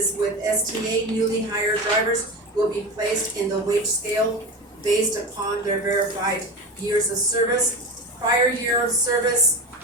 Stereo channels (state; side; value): normal; both; correlation 0.24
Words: with STA, newly hired drivers will be placed in the wage scale based upon their verified years of service, prior year of service,